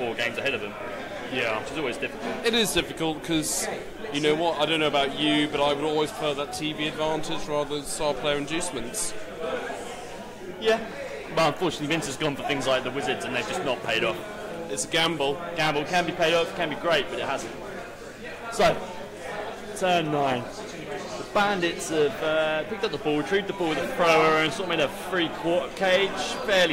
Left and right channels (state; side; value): identical; both; correlation 1.00